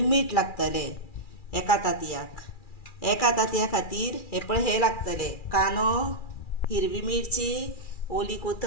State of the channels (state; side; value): late; right; 2.4 ms